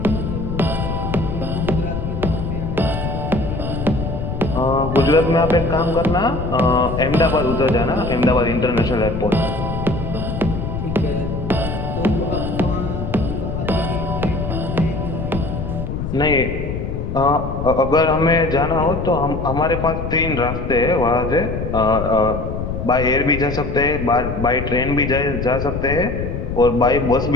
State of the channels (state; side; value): noise; left; rumble, 4 dB below the sound